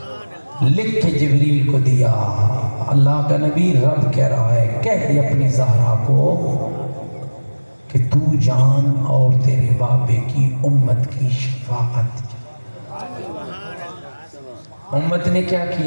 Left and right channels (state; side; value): inverted; both; correlation -1.00